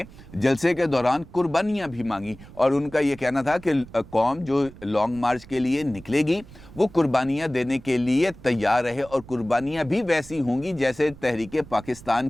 जलसे के दौरान कुर्बानियाँ भी मांगी, और उनका ये कहना था कि कौम जो लॉन्ग मार्च के लिए निकलेगी वो कुर्बानियाँ देने के लिए तैयार रहे, और कुर्बानियाँ भी वैसी होंगी जैसे तहरीक पाकिस्तान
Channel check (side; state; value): right; noise; rumble, 19 dB below the sound